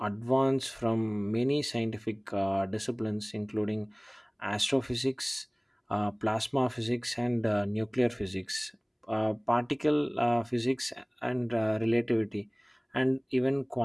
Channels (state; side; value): identical; both; correlation 1.00